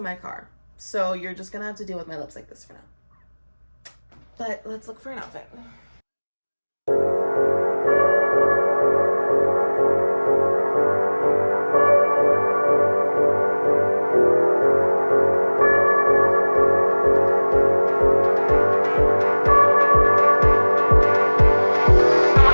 my car. So you're just gonna have to deal with my lips like this for now. But let's look for an outfit.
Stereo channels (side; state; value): both; inverted; correlation -1.00